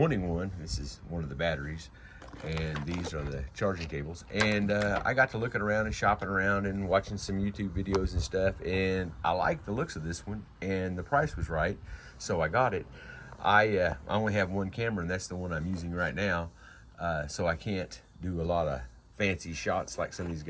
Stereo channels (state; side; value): identical; both; correlation 1.00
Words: one. This is one of the batteries, and these are the charging cables. And I got to looking around and shopping around and watching some YouTube videos and stuff, and I like the looks of this one, and the price was right, so I got it. I only have one camera, and that's the one I'm using right now, so I can't do a lot of fancy shots like some of these